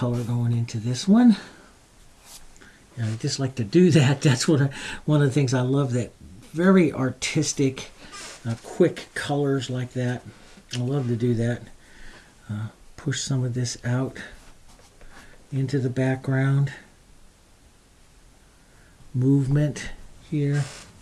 going into this one. And I just like to do that. That's one of the things I love, that very artistic, quick colors like that. I love to do that. Push some of this out into the background. Movement here.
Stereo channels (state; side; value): identical; both; correlation 1.00